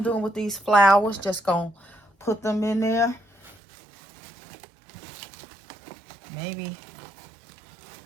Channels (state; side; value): drops out; left; at 3.6 s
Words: doing with these flowers. Just going to put them in there. Maybe